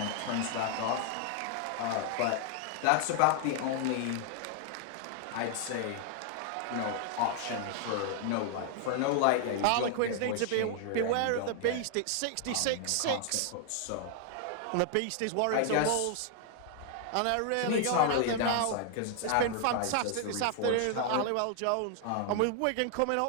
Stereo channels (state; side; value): different; both; correlation 0.00